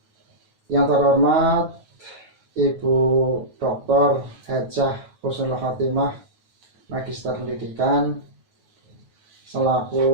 Yang terhormat Ibu Dr. Hajah Husnul Khotimah, Magister Pendidikan,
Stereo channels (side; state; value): left; late; 9.3 ms